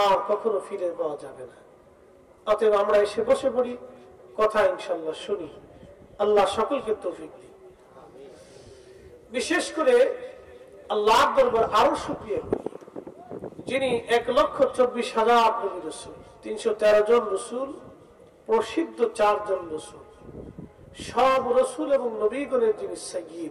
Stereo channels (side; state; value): both; identical; correlation 1.00